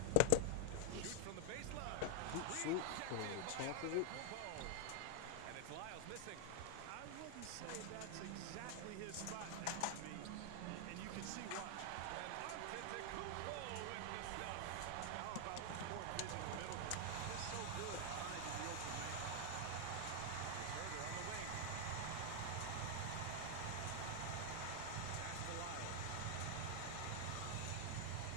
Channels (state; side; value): different; both; correlation 0.00